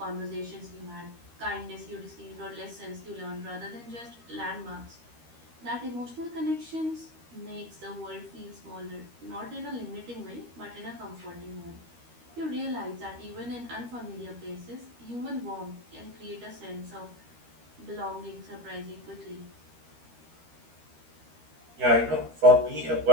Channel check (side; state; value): left; late; 13 ms